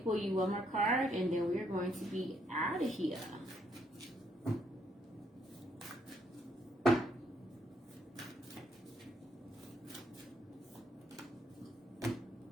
you one more card, and then we're going to be out of here.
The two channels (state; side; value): normal; both; correlation 0.72